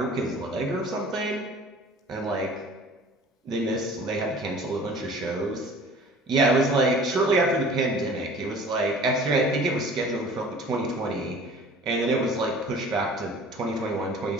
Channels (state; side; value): normal; both; correlation 0.46